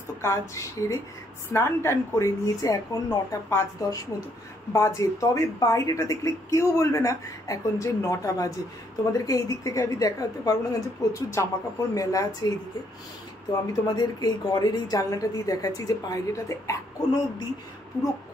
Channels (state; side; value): normal; both; correlation 0.70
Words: কাজ সেরে স্নান টান করে নিয়েছে। এখন 9টা 5-10 মতো বাজে, তবে বাইরেটা দেখলে কেউ বলবে না এখন যে 9টা বাজে। তোমাদেরকে এই দিক থেকে আমি দেখাতে পারবো না, কারণ যে প্রচুর জামা কাপড় মেলা আছে এইদিকে। তো আমি তোমাদেরকে এই ঘরের এই জানলাটা দিয়ে দেখাচ্ছি যে বাইরেটাতে এখনো অবধি পুরো